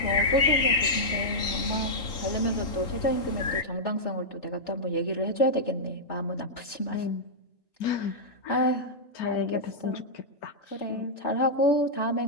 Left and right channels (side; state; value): right; late; 3.8 ms